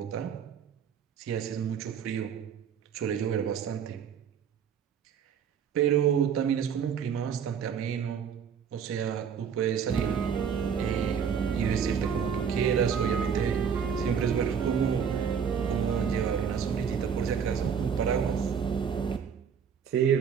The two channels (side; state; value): left; quieter; 7.3 dB